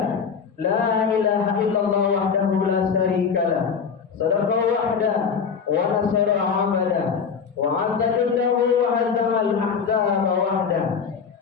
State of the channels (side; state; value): right; quieter; 6.2 dB